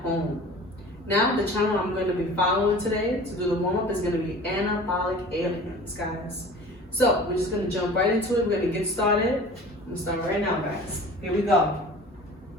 home. Now, the channel I'm going to be following today to do the warm-up is going to be Anabolic Aliens, guys. So, we're just going to jump right into it. We're going to get started. I'm going to start right now, guys. Here we go.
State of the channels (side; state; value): both; normal; correlation 0.42